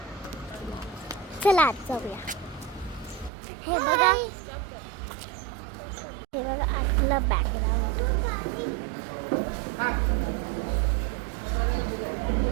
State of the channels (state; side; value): drops out; left; at 3.3 s